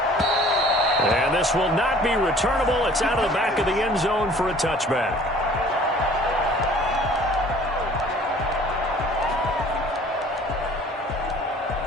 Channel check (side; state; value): both; normal; correlation 0.51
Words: And this will not be returnable. It's out of the back of the end zone for a touchback.